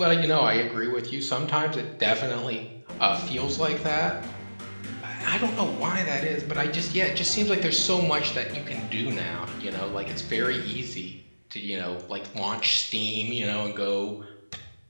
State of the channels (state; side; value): inverted; both; correlation -1.00